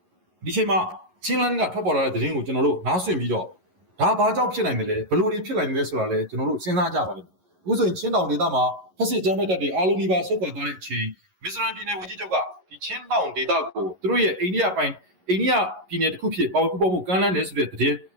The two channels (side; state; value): left; late; 11 ms